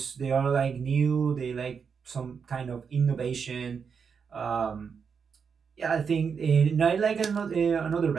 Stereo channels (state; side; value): quieter; left; 6.2 dB